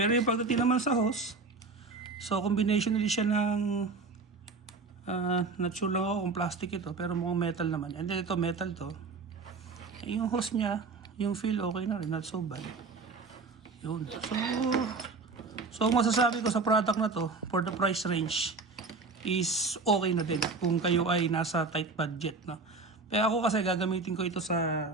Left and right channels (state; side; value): quieter; left; 4.1 dB